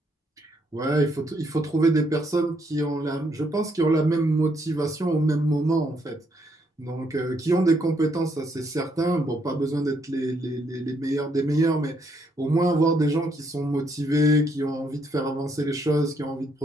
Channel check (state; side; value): normal; both; correlation 0.73